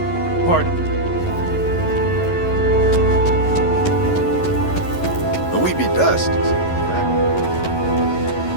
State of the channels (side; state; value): right; late; 11 ms